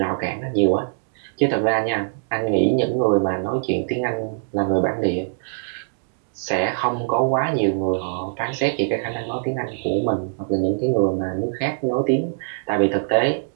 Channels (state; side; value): silent; left; digital silence